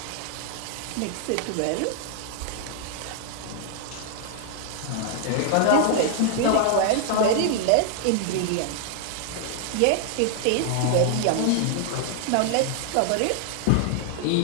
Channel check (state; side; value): different; both; correlation 0.00